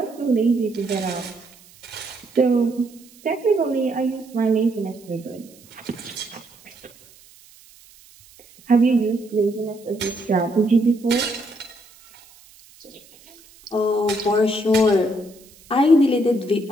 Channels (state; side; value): noise; right; hiss, 26 dB below the sound